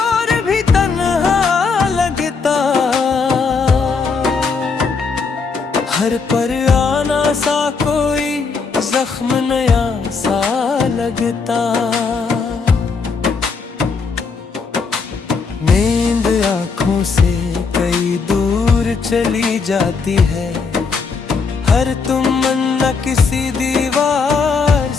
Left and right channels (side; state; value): right; quieter; 5.0 dB